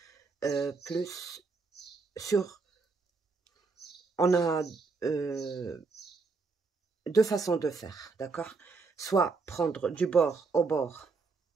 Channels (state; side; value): quieter; left; 4.3 dB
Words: plus sur, on a deux façons de faire, d'accord, soit prendre du bord au bord